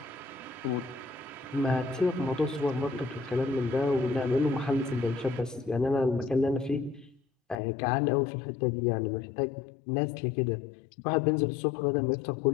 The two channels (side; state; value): right; drops out; at 7.6 s